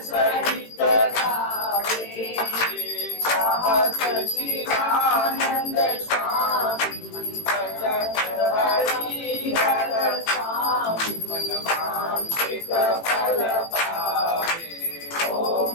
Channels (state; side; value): late; right; 18 ms